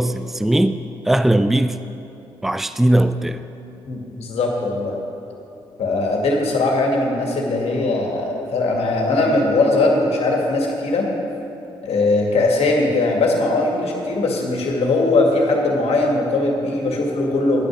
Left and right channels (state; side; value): normal; both; correlation 0.70